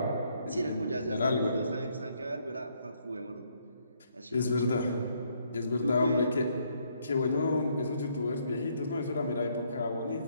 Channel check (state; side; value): inverted; both; correlation -0.71